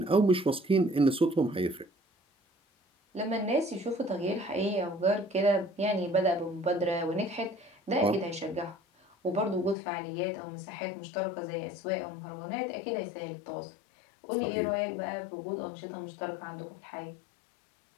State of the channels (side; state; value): right; drops out; at 9.8 s